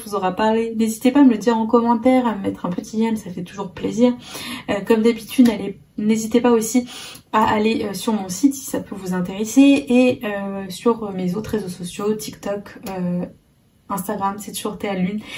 vous aura parlé. N'hésitez pas à me le dire en commentaire, à me mettre un petit j'aime, ça fait toujours plaisir. Comme d'habitude, n'hésitez pas aussi à aller sur mon site si ça peut vous intéresser et sur mes autres réseaux sociaux, TikTok, Instagram, c'est toujours Théa Lune.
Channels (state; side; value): identical; both; correlation 1.00